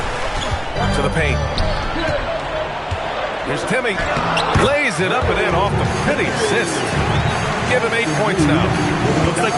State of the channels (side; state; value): both; identical; correlation 1.00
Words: To the paint. Here's Timmy. Lays it up and in off the pretty assist. Give him 8 points now. Looks like